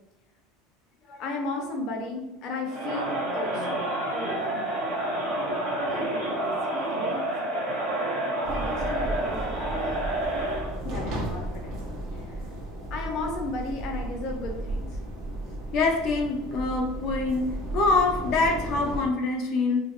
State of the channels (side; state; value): both; normal; correlation 0.42